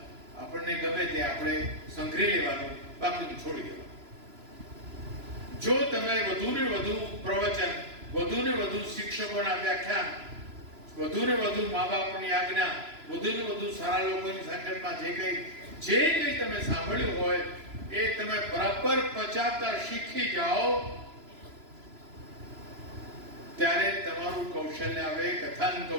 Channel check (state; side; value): late; left; 3.0 ms